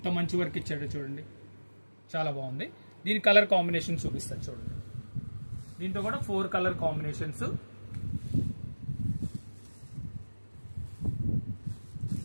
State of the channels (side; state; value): both; inverted; correlation -1.00